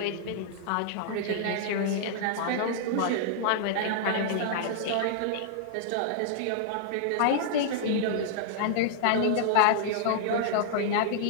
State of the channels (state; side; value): different; both; correlation -0.01